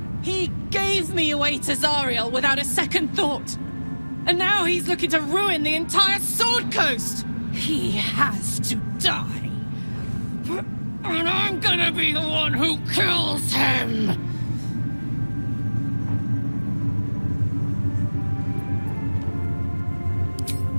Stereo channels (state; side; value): inverted; both; correlation -1.00